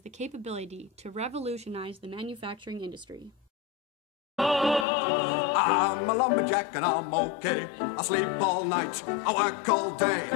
the capability to revolutionize the manufacturing industry. I'm a lumberjack and I'm okay. I sleep all night, I work all day.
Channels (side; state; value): right; drops out; at 4.9 s